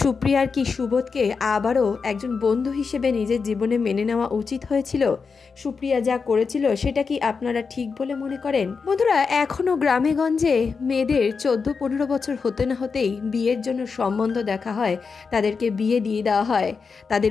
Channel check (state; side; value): quieter; right; 5.2 dB